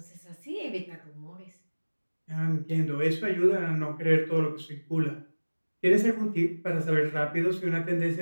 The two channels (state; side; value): inverted; both; correlation -1.00